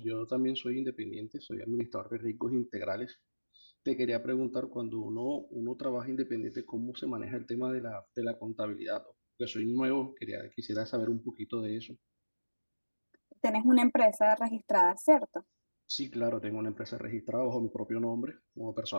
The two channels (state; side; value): inverted; both; correlation -1.00